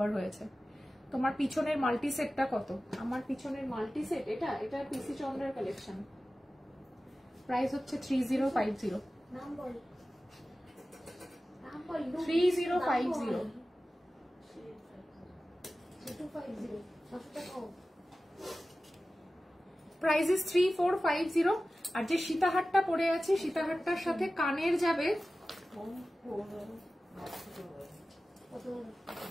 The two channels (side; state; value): both; normal; correlation 0.96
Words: হয়েছে। তোমার পিছনের মাল্টি সেটটা কত? আমার পিছনের মাল্টি সেট এটা পিসি চন্দ্রের কালেকশন, প্রাইস হচ্ছে 3050। নাম বল, নাম বল। 3050 250 কতটা কম? Price is 3450। আর যে সীতাহারটা পরে আছে, সীতাহারটার সাথে কানের যাবে,